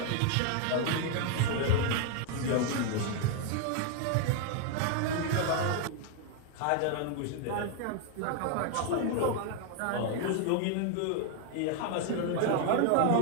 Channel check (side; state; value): both; different; correlation 0.00